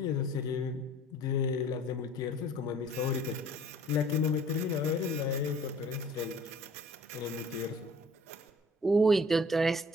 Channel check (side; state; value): both; normal; correlation 0.52